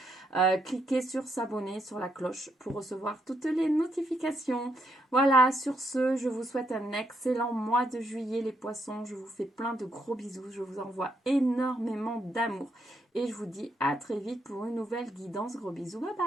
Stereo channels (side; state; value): both; normal; correlation 0.77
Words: Cliquez sur s'abonner, sur la cloche pour recevoir toutes les notifications. Voilà, sur ce, je vous souhaite un excellent mois de juillet, les poissons. Je vous fais plein de gros bisous, je vous envoie énormément d'amour. Et je vous dis à très vite pour une nouvelle guidance. Gros bisous, bye